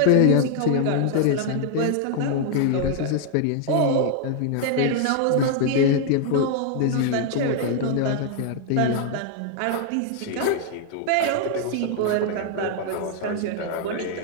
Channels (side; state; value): both; different; correlation 0.00